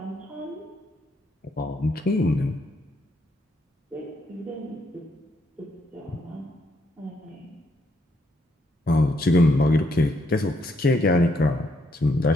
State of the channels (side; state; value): both; normal; correlation 0.74